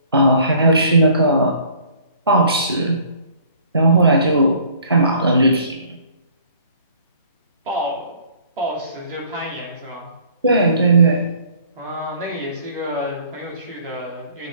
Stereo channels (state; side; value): inverted; both; correlation -0.56